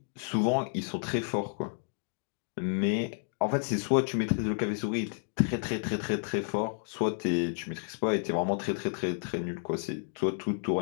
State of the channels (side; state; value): right; silent; digital silence